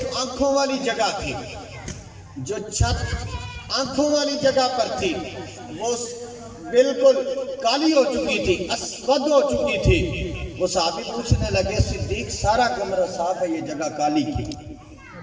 آنکھوں والی جگہ تھی، جو چھت آنکھوں والی جگہ پر تھی وہ بالکل کالی ہو چکی تھی، اسود ہو چکی تھی۔ وہ صحابی پوچھنے لگے صدیق سارا کمرہ صاف ہے، یہ جگہ کالی کی؟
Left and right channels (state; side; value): identical; both; correlation 1.00